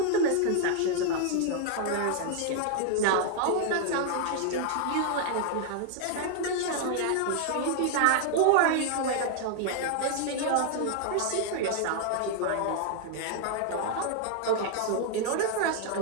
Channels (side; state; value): both; different; correlation 0.00